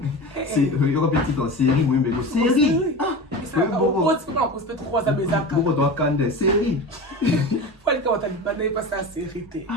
C'est il y aura petit en série, oui, mais série. Pourquoi tu peux en poster 3 à mes actes? Pourquoi tu as candé série? Faut aller quand tu as dit pas passer à série.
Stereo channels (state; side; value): normal; both; correlation 0.29